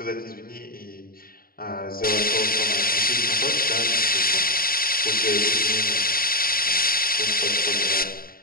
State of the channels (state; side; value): late; right; 0.43 ms